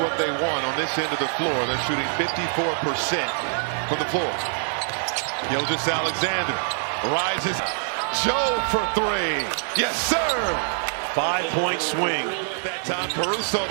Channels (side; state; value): left; silent; digital silence